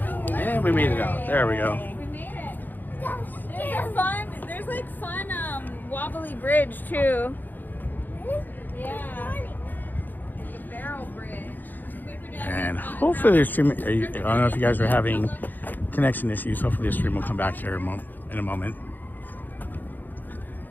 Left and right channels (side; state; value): right; late; 0.088 ms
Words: And we made it out. There we go. We made it. There's a fun, wobbly bridge too. Yeah. The barrel bridge. And hopefully the stream, I don't know if you guys are having connection issues. Hopefully the stream will come back here in a moment.